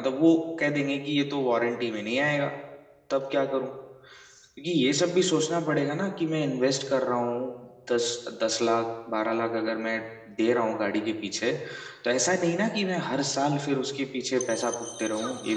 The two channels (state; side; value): identical; both; correlation 1.00